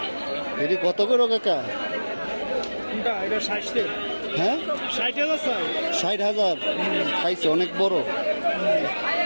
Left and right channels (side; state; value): both; inverted; correlation -1.00